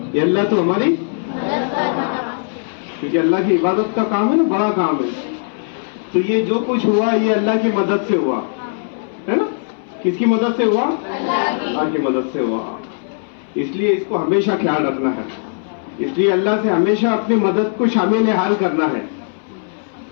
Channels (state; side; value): silent; right; 63 dB below the other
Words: ये अल्लाह तो हमारी, क्योंकि अल्लाह की इबादत का काम है ना, बड़ा काम है। तो ये जो कुछ हुआ ये अल्लाह की मदद से हुआ है ना। किसकी मदद से हुआ? अल्लाह की मदद से हुआ। इसलिए इसको हमेशा ख्याल रखना है। इसलिए अल्लाह से हमेशा अपनी मदद को शामिल हाल करना है।